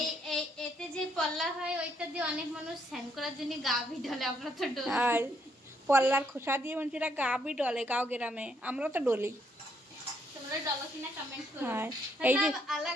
এই এতে যে পল্লা হয় ওইটা দিয়ে অনেক মানুষ স্নান করার জন্য গাভী ঢলে, আমরা তো ডলি। আর পল্লার খোসা দিয়ে মানুষেরা গাবি ডলে গাঁও গ্রামে, আমরা তো ডলি। তোমরা ডলো কিনা কমেন্ট করো। হ্যাঁ এই যে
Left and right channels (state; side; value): normal; both; correlation 0.72